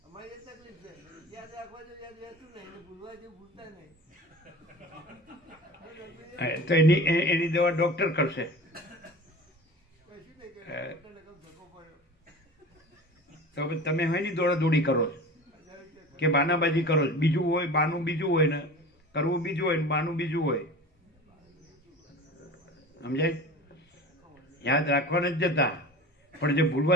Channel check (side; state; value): both; normal; correlation 0.37